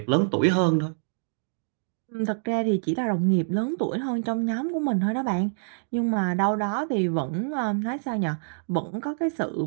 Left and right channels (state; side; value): silent; left; digital silence